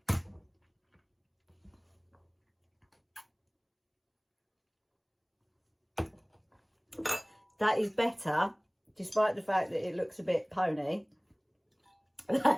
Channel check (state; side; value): identical; both; correlation 1.00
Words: that is better, despite the fact that it looks a bit pony.